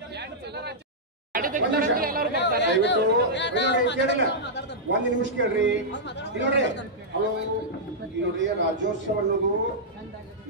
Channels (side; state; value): both; normal; correlation -0.09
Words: ದಯವಿಟ್ಟು ಒಂದ್ ನಿಮಿಷ ಕೇಳ್ರಿ. ನೋಡ್ರಿ ಹಲೋ, ನೋಡ್ರಿ ರಾಜ್ಯೋತ್ಸವ ಅನ್ನೋದು